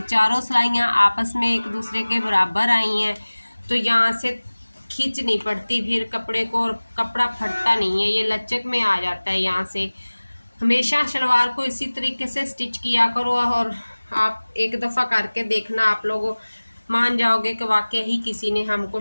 चारों सिलाइयाँ आपस में एक दूसरे के बराबर आई हैं, तो यहाँ से खींच नहीं पड़ती फिर कपड़े को, और कपड़ा फटता नहीं है, ये लचक में आ जाता है। यहाँ से हमेशा शलवार को इसी तरीके से स्टिच किया करो और आप एक दफ़ा करके देखना, आप लोग मान जाओगे कि वाकई ही किसी ने हमको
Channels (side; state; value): both; inverted; correlation -1.00